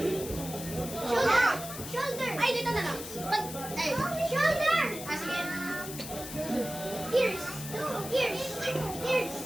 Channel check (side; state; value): left; noise; hiss, 10 dB below the sound